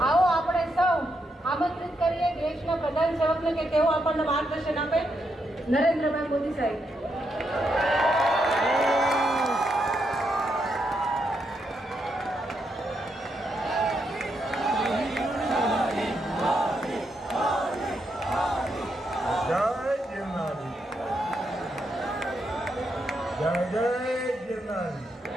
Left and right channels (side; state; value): both; normal; correlation 0.81